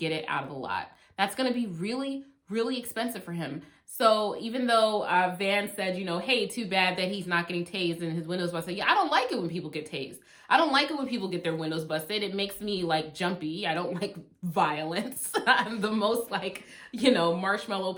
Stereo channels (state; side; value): identical; both; correlation 1.00